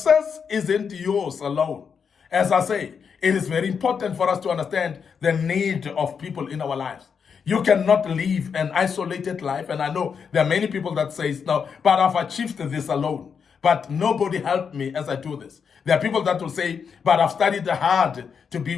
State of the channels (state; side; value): quieter; right; 6.4 dB